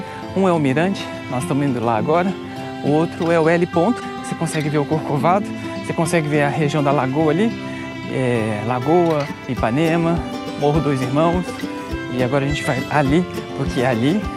Um é o Mirante, nós estamos indo lá agora. O outro é o L ponto, você consegue ver o Corcovado, você consegue ver a região da Lagoa ali, Lagoa, Ipanema, Morro dos Irmãos. E agora a gente vai ali, porque ali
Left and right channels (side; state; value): both; identical; correlation 1.00